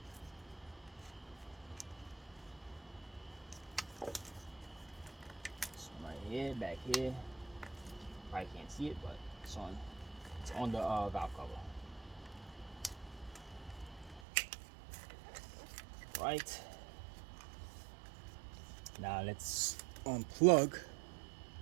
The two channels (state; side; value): drops out; left; at 14.2 s